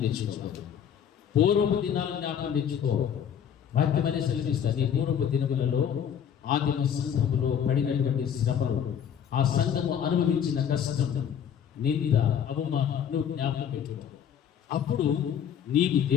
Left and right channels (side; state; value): right; quieter; 8.7 dB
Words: తెచ్చుకోవాలి. పూర్వపు దినాలను జ్ఞాపకం తెచ్చుకో. వాక్యం అనే సెలవిస్తుంది. పూర్వపు దినములలో ఆదిమ సంఘములో పడినటువంటి శ్రమలు, ఆ సంఘము అనుభవించిన కష్టం, నింద, అవమానం నువ్వు జ్ఞాపకం పెట్టుకో. అప్పుడు నీకు